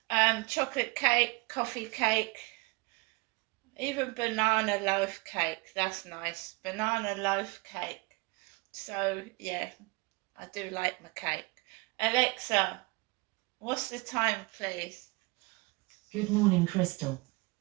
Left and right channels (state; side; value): quieter; left; 26.7 dB